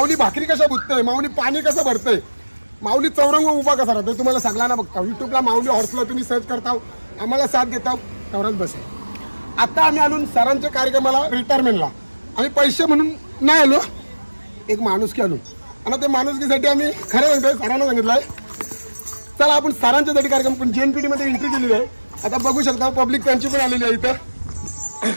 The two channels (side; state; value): both; inverted; correlation -1.00